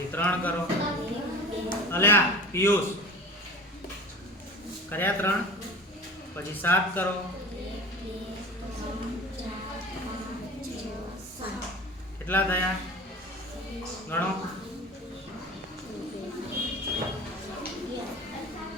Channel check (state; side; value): normal; both; correlation 0.37